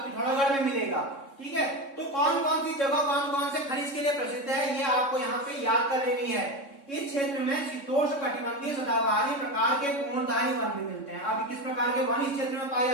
पिथौरागढ़ में मिलेगा। ठीक है, तो कौन कौन सी जगह कौन कौन से खनिज के लिए प्रसिद्ध है ये आपको यहाँ पे याद कर लेनी है। इस क्षेत्र में शीतोष्ण कटिबंधीय सदाबहारी प्रकार के कोणधारी वन भी मिलते हैं। अब किस प्रकार के वन इस क्षेत्र में पाए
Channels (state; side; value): late; right; 3.6 ms